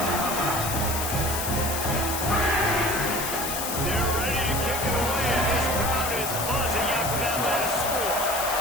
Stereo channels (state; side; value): noise; left; hiss, 3 dB below the sound